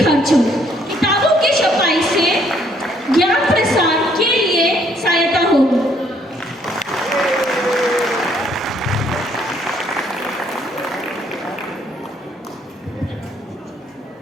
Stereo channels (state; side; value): normal; both; correlation 0.66